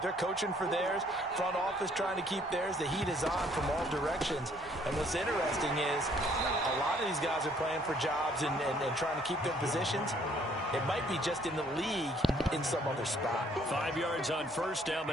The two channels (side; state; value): both; normal; correlation 0.63